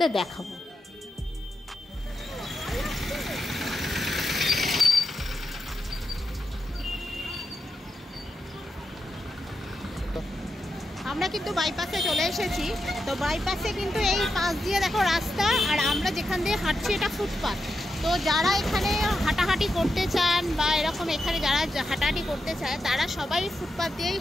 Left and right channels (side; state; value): both; normal; correlation 0.87